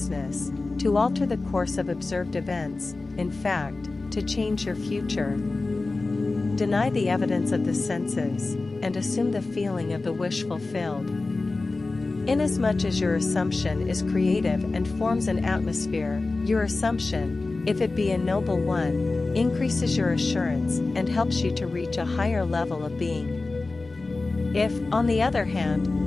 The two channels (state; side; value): quieter; right; 3.4 dB